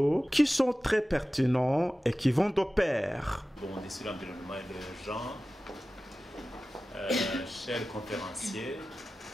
qui sont très pertinents et qui vont de pair. Bon, on est sur l'environnement et le genre. Chers conférenciers,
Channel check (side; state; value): both; normal; correlation 0.95